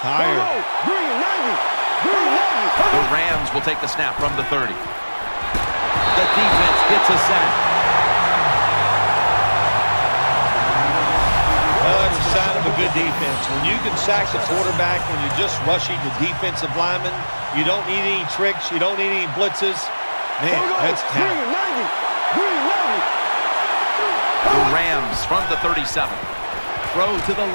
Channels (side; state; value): both; inverted; correlation -1.00